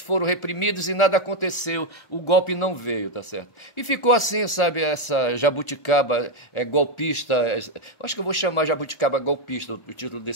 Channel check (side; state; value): right; late; 1.4 ms